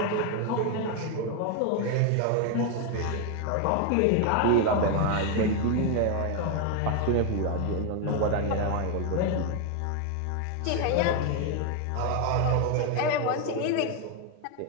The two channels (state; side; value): different; both; correlation 0.01